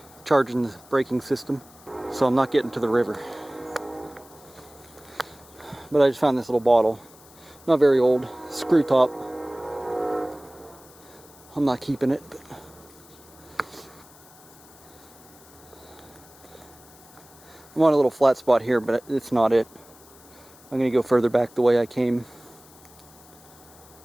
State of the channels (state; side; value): noise; left; hiss, 24 dB below the sound